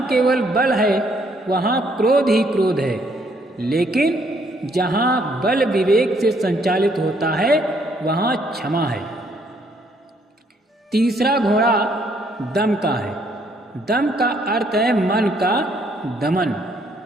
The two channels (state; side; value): normal; both; correlation 0.68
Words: केवल बल है वहाँ क्रोध ही क्रोध है, लेकिन जहाँ बल विवेक से संचालित होता है वहाँ क्षमा है। तीसरा घोड़ा दम का है। दम का अर्थ है मन का दमन।